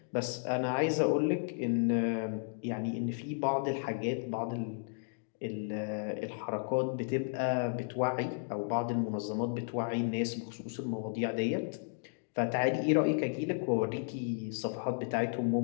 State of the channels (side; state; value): right; silent; digital silence